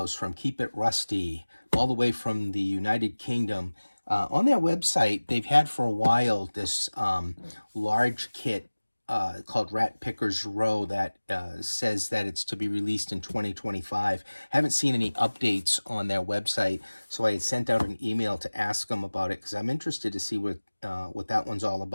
from Keep It Rusty, all the way from the United Kingdom. On their website, they've had for a while this large kit called Rat Picker's Row that says that it's to be released in 2025. Haven't seen any updates on their website, so I had sent out an email to ask them about it because I'm interested to see what that one's all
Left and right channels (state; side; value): inverted; both; correlation -1.00